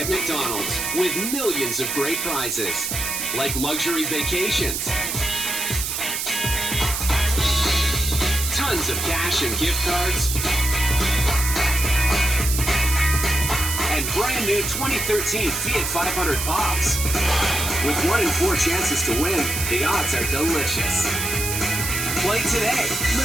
at McDonald's with millions of great prizes, like luxury vacations, tons of cash and gift cards, and brand new 2013 Fiat 500 Pops. With 1 in 4 chances to win, the odds are delicious. Play today.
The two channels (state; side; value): noise; right; hiss, 2 dB below the sound